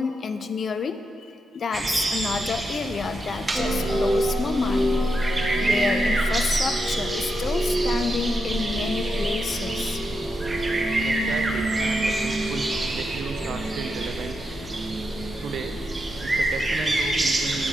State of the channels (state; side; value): normal; both; correlation 0.85